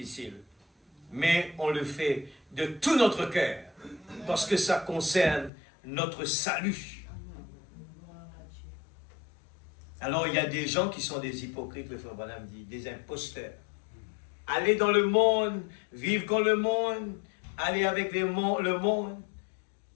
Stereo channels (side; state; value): right; drops out; at 5.5 s